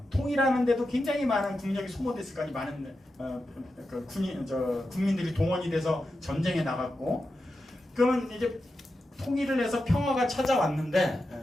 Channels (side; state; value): both; normal; correlation 0.90